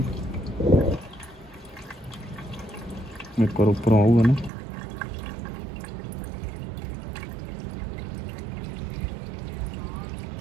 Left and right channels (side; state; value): left; drops out; at 4.5 s